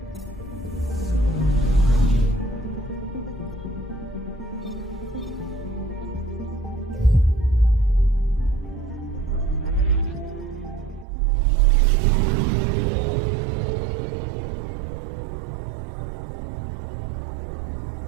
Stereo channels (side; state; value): left; drops out; at 11.1 s